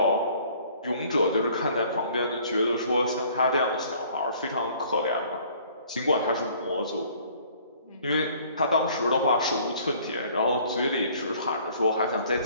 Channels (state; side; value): inverted; both; correlation -0.56